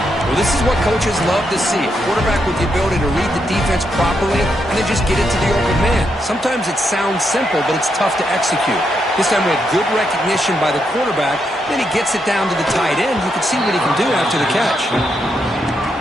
Well, this is what coaches love to see. A quarterback with the ability to read the defense properly and then just get it to the open man. Sometimes it sounds simple, but it's tough to execute. This time we had good recognition by the quarterback. Then he gets it down to the tight end. You can see what he can do after the catch.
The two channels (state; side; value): normal; both; correlation 0.80